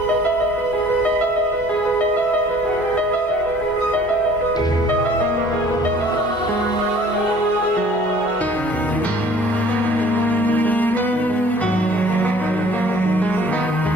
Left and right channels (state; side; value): normal; both; correlation 0.53